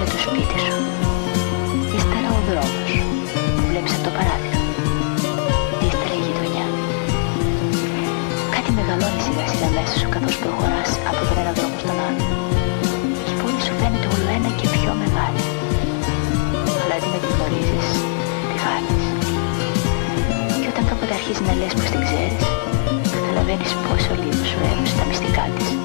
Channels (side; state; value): right; silent; 65 dB below the other